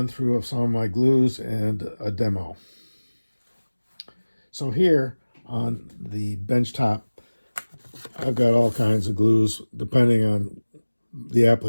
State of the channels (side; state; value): both; inverted; correlation -1.00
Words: through of some of my glues and a demo. So here on the bench top, I've got all kinds of glues depending on the